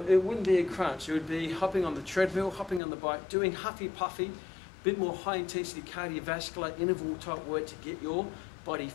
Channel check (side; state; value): right; drops out; at 2.8 s